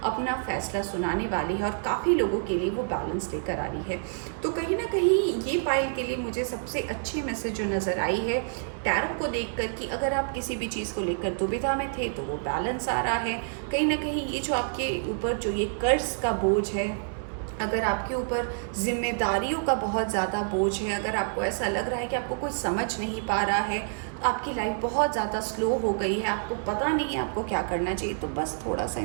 अपना फैसला सुनाने वाली है और काफ़ी लोगों के लिए वो बैलेंस लेकर आ रही है। तो कहीं ना कहीं ये पाइल के लिए मुझे सबसे अच्छी मैसेज जो नज़र आई है टैरो को देखकर कि अगर आप किसी भी चीज़ को लेकर दुविधा में थे तो वो बैलेंस आ रहा है। कहीं ना कहीं ये जो आपके ऊपर जो ये कर्ज का बोझ है, अगर आपके ऊपर जिम्मेदारियों का बहुत ज़्यादा बोझ है, अगर आपको ऐसा लग रहा है कि आपको कोई समझ नहीं पा रहा है, आपकी लाइफ बहुत ज़्यादा स्लो हो गई है, आपको पता नहीं है आपको क्या करना चाहिए, तो बस थोड़ा सा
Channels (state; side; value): silent; left; digital silence